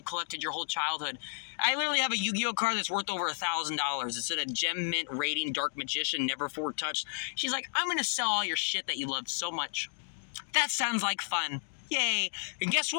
collected your whole childhood. I literally have a Yu-Gi-Oh card that's worth over $1,000. It's at a Gem Mint rating, Dark Magician, never before touched. She's like, I'm going to sell all your shit that you loved so much. That sounds like fun. Yay. And guess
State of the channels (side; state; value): right; silent; digital silence